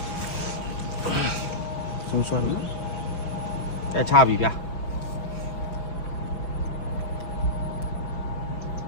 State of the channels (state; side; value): late; right; 5.4 ms